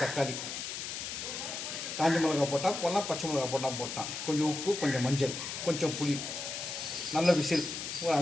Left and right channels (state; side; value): noise; left; hiss, 6 dB below the sound